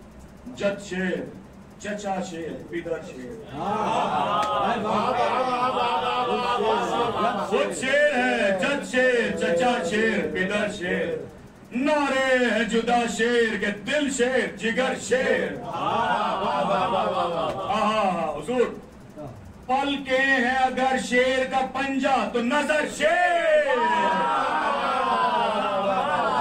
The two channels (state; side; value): identical; both; correlation 1.00